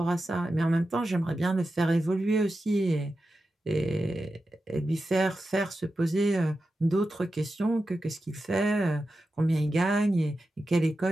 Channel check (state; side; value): normal; both; correlation 0.91